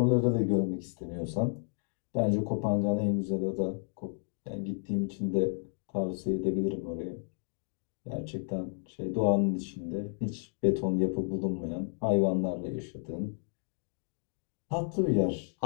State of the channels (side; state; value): right; silent; 56 dB below the other